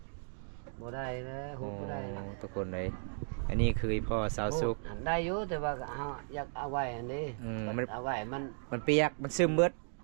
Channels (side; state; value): left; silent; digital silence